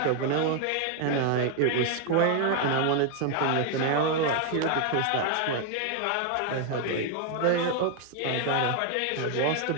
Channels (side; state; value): both; different; correlation 0.01